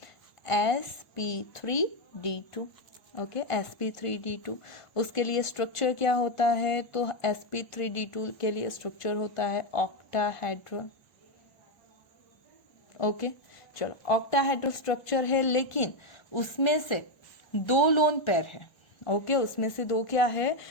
sp3d2। ओके, sp3d2 उसके लिए स्ट्रक्चर क्या होता है, तो sp3d2 के लिए स्ट्रक्चर होता है ऑक्टाहेड्रल। ओके, चलो ऑक्टाहेड्रल स्ट्रक्चर है, लेकिन उसमें से 2 लोन पेयर है। ओके, उसमें से 2 क्या है,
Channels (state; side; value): late; right; 1.1 ms